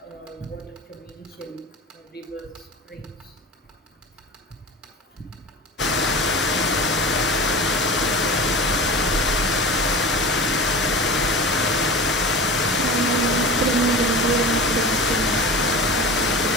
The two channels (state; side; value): normal; both; correlation 0.33